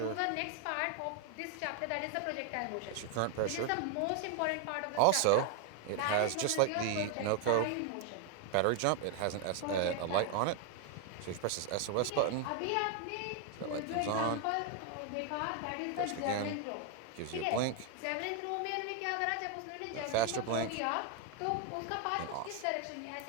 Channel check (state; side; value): different; both; correlation 0.00